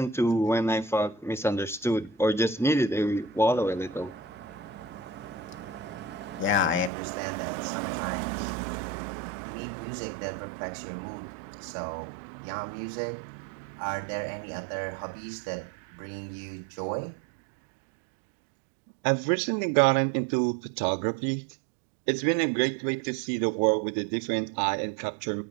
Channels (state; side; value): drops out; left; at 6.9 s